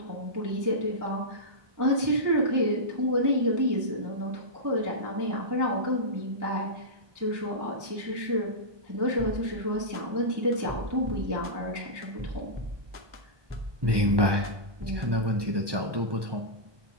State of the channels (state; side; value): late; left; 1.2 ms